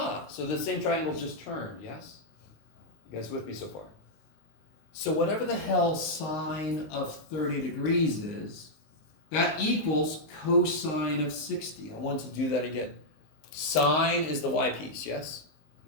so the same triangle just turned, yes? You guys with me so far? So whatever the hell sine of 30 degrees is, that equals cosine of 60. I want to do that again. Sine is the y piece, yes?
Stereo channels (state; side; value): late; right; 19 ms